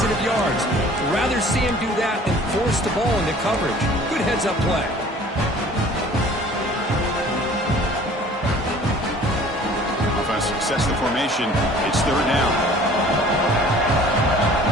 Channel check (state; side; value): normal; both; correlation 0.50